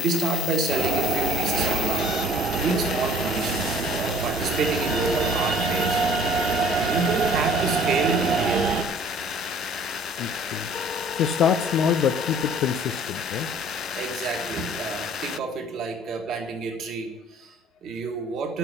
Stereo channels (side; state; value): both; normal; correlation 0.51